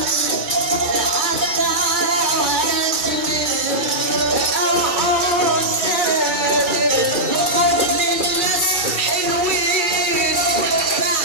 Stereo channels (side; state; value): left; late; 2.4 ms